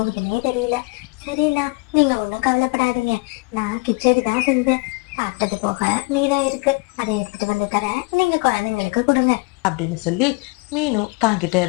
தெரியல. சரிண்ணா, நீங்க ஒண்ணும் கவலைப்படாதீங்க. நான் கிச்சடி தான் செஞ்சேன். சாப்பிட்டது போக மீதம் இருக்கு, அதை எடுத்துட்டு வந்து தரேன், நீங்க குழந்தைங்களுக்கு கொடுங்க அப்படின்னு சொல்லி மீனு தாங்கிட்ட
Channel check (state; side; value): quieter; right; 28.3 dB